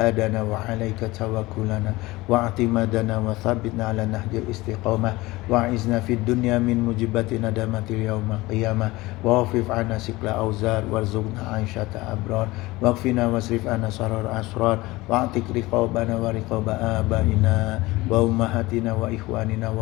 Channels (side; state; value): right; quieter; 20.3 dB